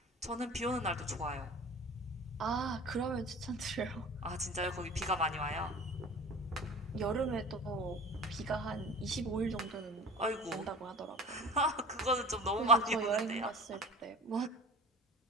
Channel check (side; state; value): both; normal; correlation 0.39